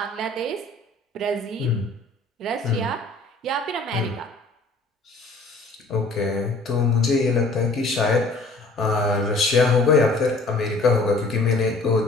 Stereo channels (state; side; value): quieter; right; 3.1 dB